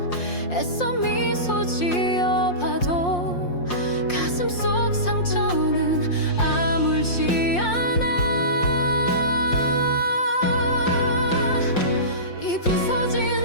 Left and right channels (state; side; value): late; right; 5.6 ms